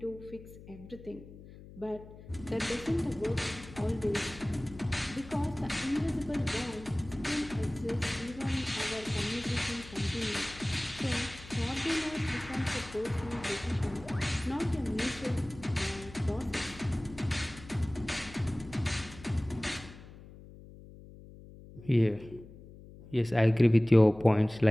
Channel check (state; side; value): noise; left; hum, 18 dB below the sound